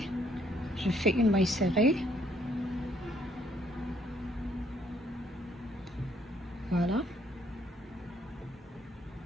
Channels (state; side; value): normal; both; correlation 0.68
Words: je fais une maille serrée. Voilà.